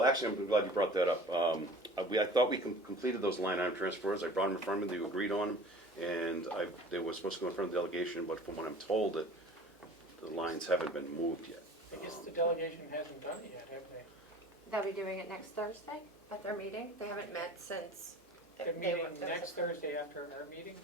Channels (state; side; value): normal; both; correlation 0.43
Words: actually, I'm glad you brought that up. I thought we completed those line item transfers. I brought them in front of me, you agreed on them, and they were supposed to go in front of the delegation, but from what I'm told, that the lines haven't been moved yet. I guess the delegation hasn't done it yet, have they? They'll be doing it next Thursday at their meeting. They haven't met since. They're they were- meeting there was next a- Thursday after our meeting?